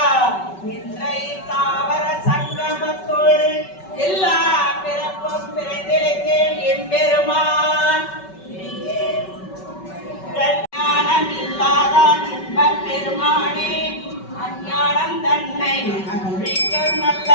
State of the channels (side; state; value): right; late; 5.3 ms